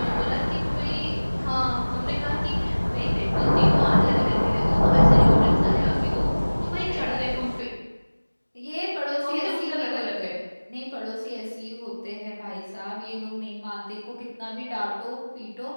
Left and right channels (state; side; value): inverted; both; correlation -1.00